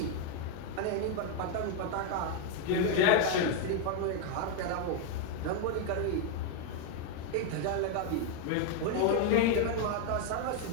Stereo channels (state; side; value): different; both; correlation 0.01